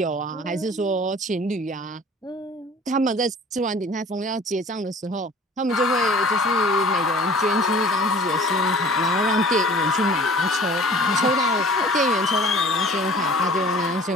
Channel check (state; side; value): normal; both; correlation 0.47